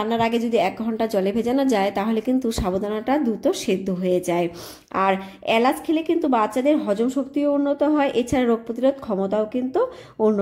আগে যদি 1 ঘন্টা জলে ভেজানো যায় তাহলে কিন্তু সাবুদানাটা দ্রুত সেদ্ধ হয়ে যায়। আর এলাচ খেলে কিন্তু বাচ্চাদের হজম শক্তিও উন্নত হয়, এছাড়া রোগ প্রতিরোধ ক্ষমতাও কিন্তু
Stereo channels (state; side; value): identical; both; correlation 1.00